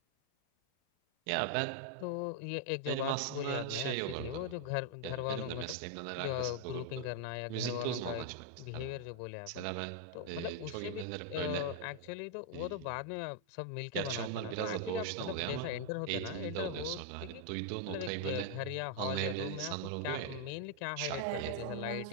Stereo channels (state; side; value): different; both; correlation 0.00